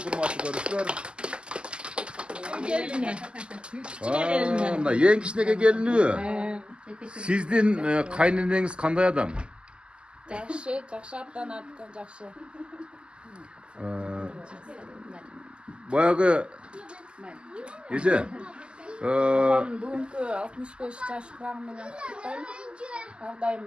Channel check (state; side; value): late; left; 0.050 ms